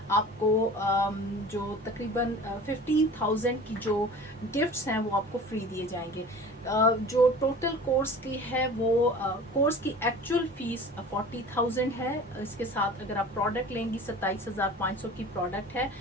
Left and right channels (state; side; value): normal; both; correlation 0.41